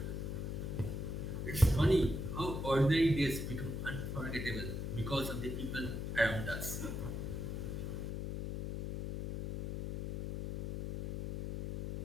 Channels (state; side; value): noise; left; hum, 4 dB below the sound